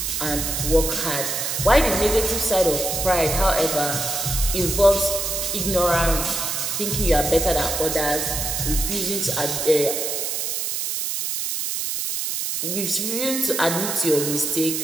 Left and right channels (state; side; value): noise; right; hiss, 2 dB below the sound